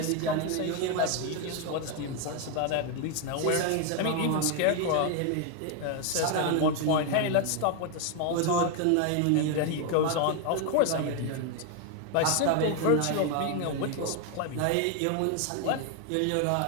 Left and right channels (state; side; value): different; both; correlation 0.01